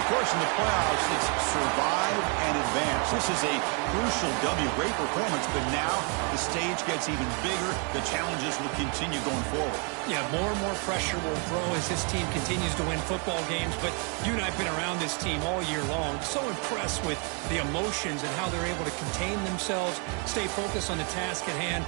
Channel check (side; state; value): left; quieter; 36.9 dB